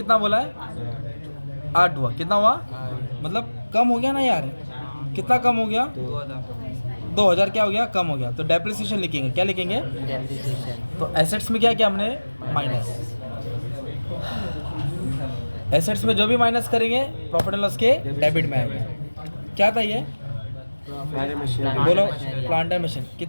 बोला है? 8 हुआ। कितना हुआ? मतलब कम हो गया ना यार। कितना कम हो गया? 2000 क्या हो गया? कम हो गया। तो डेप्रिसिएशन लिखेंगे। क्या लिखेंगे? तो एसेट्स में क्या किया हमने? माइनस। एसेट्स में जो भी माइनस करेंगे प्रॉफिट एंड लॉस के डेबिट में आएगा। क्या था ये? बोलो, प्लांटर मशीन।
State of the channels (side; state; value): both; inverted; correlation -1.00